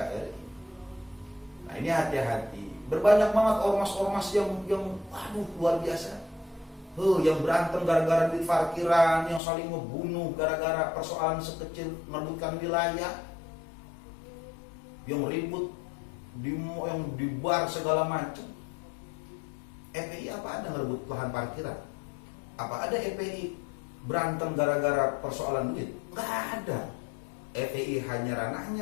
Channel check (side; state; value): right; drops out; at 9.4 s